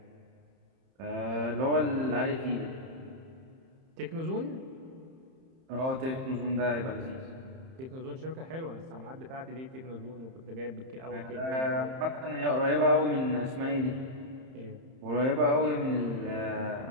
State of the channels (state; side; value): late; left; 31 ms